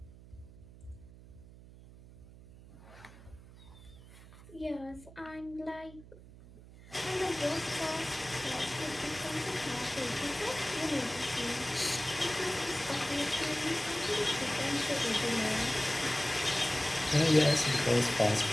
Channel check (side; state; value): right; noise; hum, 19 dB below the sound